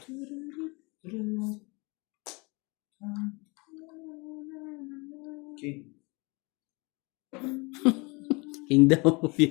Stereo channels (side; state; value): right; quieter; 28.1 dB